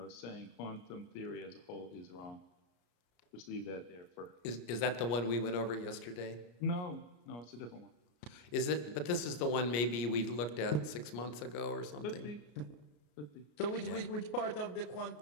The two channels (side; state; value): right; late; 34 ms